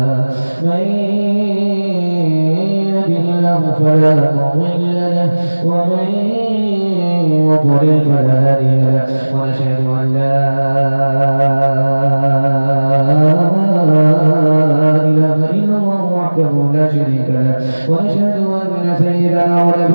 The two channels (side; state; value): both; inverted; correlation -1.00